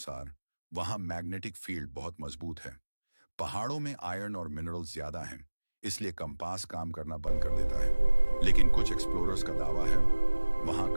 वहां मैग्नेटिक फील्ड बहुत मजबूत है। पहाड़ों में आयरन और मिनरल्स ज्यादा हैं, इसलिए कंपास काम करना बंद कर देता है। लेकिन कुछ एक्सप्लोरर्स का दावा है वहां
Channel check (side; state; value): both; inverted; correlation -1.00